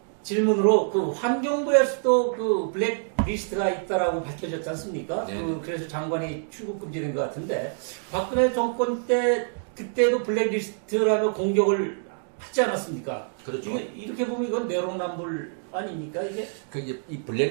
질문으로 그 환경부에서도 그 블랙리스트가 있다라고 밝혀졌지 않습니까? 네. 그래서 장관이 출국 금지된 것 같은데 박근혜 정권 때 그때도 블랙리스트라며 공격을 하지 않았습니까? 그렇죠. 이렇게 보면 이건 내로남불 아닙니까 이게? 그 이제 이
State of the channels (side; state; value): left; silent; digital silence